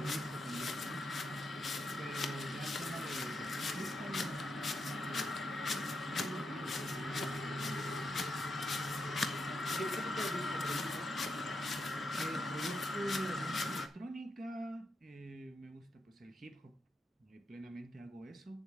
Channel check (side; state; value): both; normal; correlation 0.82